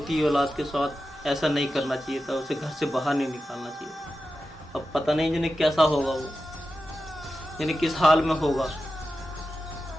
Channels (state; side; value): normal; both; correlation 0.92